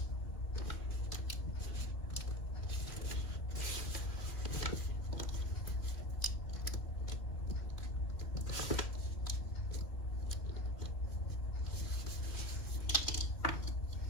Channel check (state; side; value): late; right; 2.7 ms